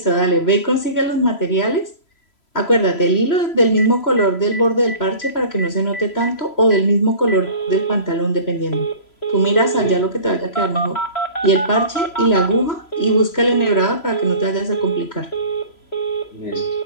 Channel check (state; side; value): late; right; 3.0 ms